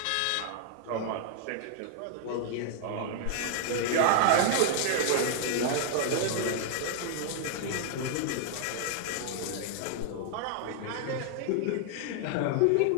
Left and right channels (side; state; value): both; different; correlation 0.00